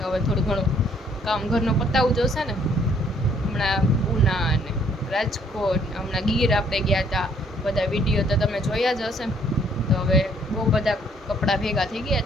હવે થોડું ઘણું કામ ઘરનું પતાવવું જોશે ને. હમણાં ઉના અને રાજકોટ, હમણાં ગીર આપણે ગયા હતા. બધા વિડીયો તો તમે જોયા જ હશે. તો હવે બહુ બધા કપડાં ભેગા થઈ ગયા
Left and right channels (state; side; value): normal; both; correlation 0.64